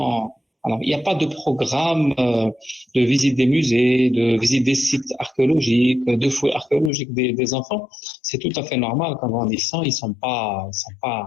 Alors, il n'y a pas de programme de visite des musées, de visite des sites archéologiques, de fouilles archéologiques des enfants. C'est tout à fait normal qu'en grandissant, ils sont pas,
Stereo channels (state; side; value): drops out; right; at 6.9 s